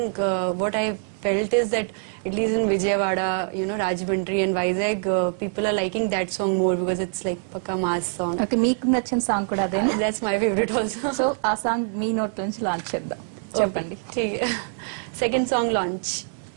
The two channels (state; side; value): silent; left; 62 dB below the other